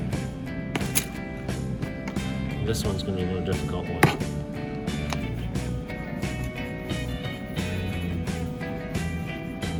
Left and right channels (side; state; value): both; identical; correlation 1.00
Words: This one's going to be a more difficult one.